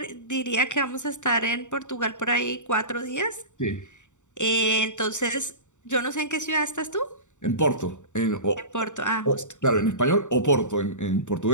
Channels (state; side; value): late; right; 0.85 ms